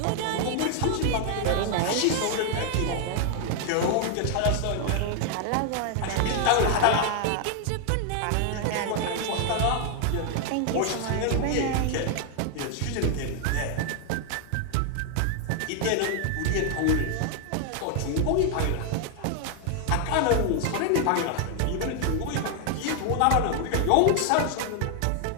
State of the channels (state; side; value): different; both; correlation 0.00